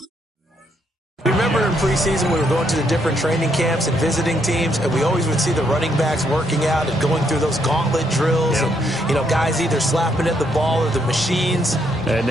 Remember in preseason we were going to the different training camps and visiting teams, and we always would see the running backs working out and going through those gauntlet drills, and guys either slapping at the ball or the machines. And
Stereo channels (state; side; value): normal; both; correlation 0.74